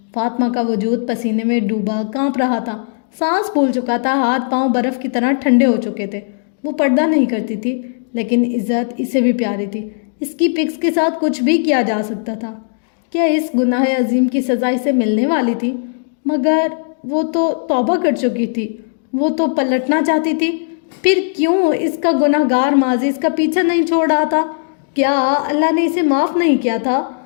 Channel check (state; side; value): silent; right; 68 dB below the other